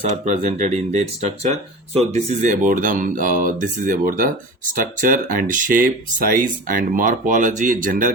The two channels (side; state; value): both; normal; correlation 0.33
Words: are presented in their structure. So this is about the structure and shape, size and morphology, general